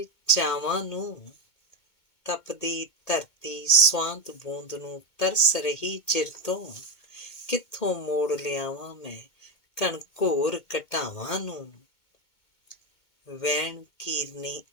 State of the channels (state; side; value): late; right; 2.2 ms